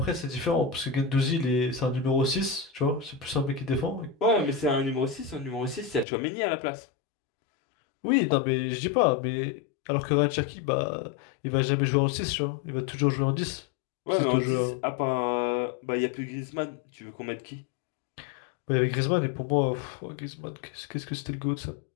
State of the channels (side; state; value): right; drops out; at 6.1 s